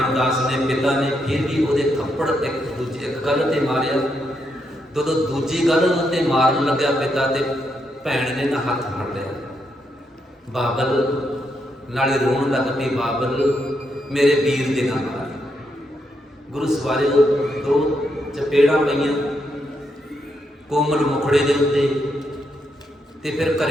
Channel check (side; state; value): both; normal; correlation 0.80